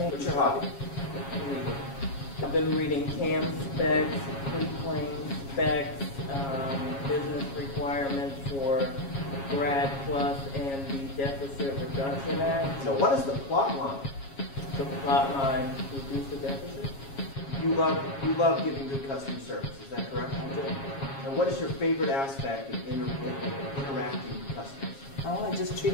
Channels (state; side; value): late; right; 7.3 ms